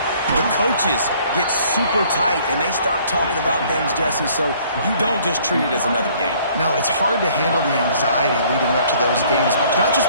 The coaches get super tight, and they start talking about things, Jesse, so you don't just treat it as another game. No, it's hard to handle the anxiety leading up to those games, not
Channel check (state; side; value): inverted; both; correlation -0.59